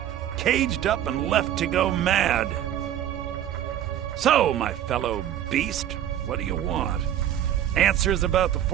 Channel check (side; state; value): left; quieter; 11.1 dB